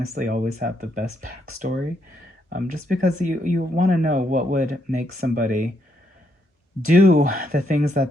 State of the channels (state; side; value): normal; both; correlation 0.76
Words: always have the best backstory. Just because you want to know what would make somebody do the things